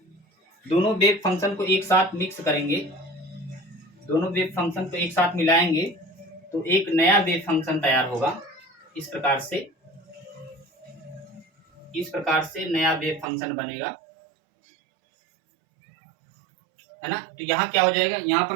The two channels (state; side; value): drops out; left; at 13.2 s